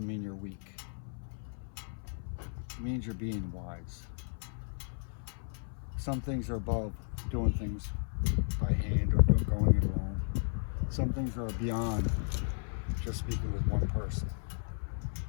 mean you're weak. It means you're being wise. Some things are above doing things by hand or going it alone. Some things are beyond just speaking with one person.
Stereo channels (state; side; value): silent; right; 55 dB below the other